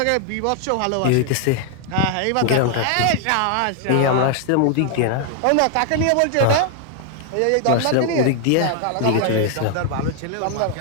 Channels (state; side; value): different; both; correlation 0.00